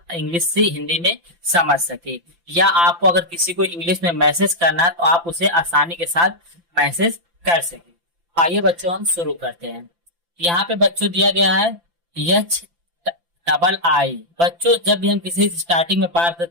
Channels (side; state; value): left; late; 5.9 ms